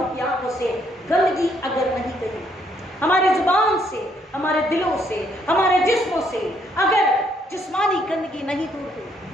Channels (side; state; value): both; normal; correlation 0.70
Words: की आंखों से गंदगी अगर नहीं गई, हमारे जुबान से, हमारे दिलों से, हमारे जिस्मों से अगर जिस्मानी गंदगी नहीं दूर हुई,